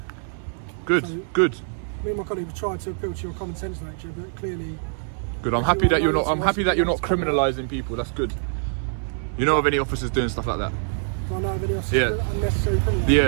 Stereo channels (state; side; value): silent; left; 62 dB below the other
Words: Good, So, good. Me and my colleague have tried to appeal to your common sense nature, but clearly... Good. I'm happy that you're not. I'm happy that you're not criminalising people. That's good. You know of any officers doing stuff like that? Do I know of any else Yeah. unnecessary criminal?